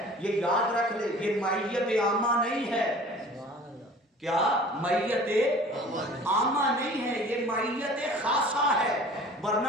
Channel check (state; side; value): normal; both; correlation 0.45